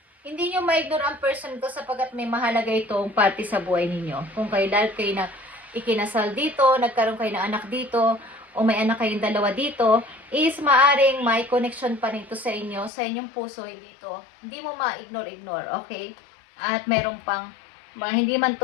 hindi nyo ma-ignore ang person to sapagkat may mahalaga itong parte sa buhay ninyo. Kung kayo na ikinasal dito, nagkaroon kayo ng anak dito, o may anak kayong dalawa dito, is maaring may connection pa nito sa inyo, sa inyong puso, hindi mo ma-ignore, okay? At meron pang, hindi man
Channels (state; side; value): drops out; right; at 12.9 s